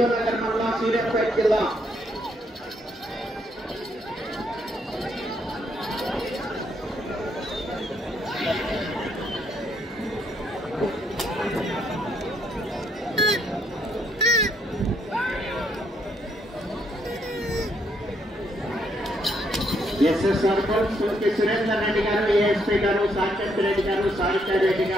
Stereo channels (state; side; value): normal; both; correlation 0.73